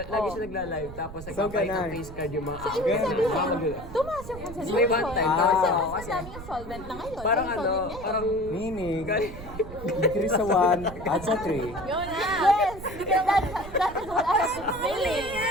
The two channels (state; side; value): noise; right; rumble, 13 dB below the sound